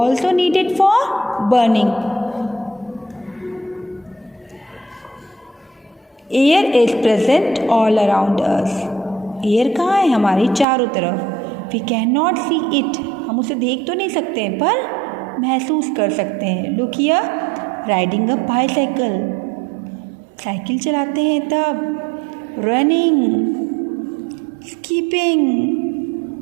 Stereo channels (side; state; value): left; drops out; at 10.7 s